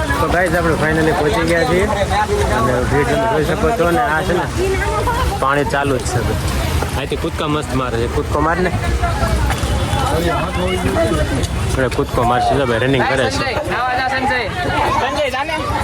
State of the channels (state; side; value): identical; both; correlation 1.00